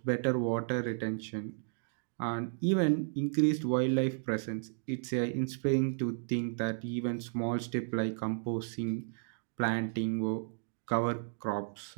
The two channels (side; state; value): left; silent; digital silence